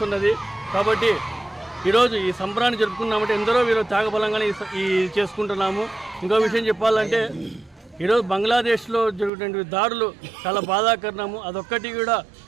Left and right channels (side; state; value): left; drops out; at 9.3 s